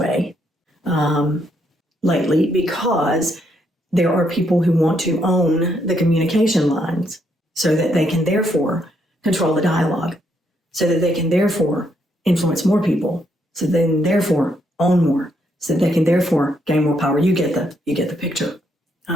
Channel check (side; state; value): both; normal; correlation 0.75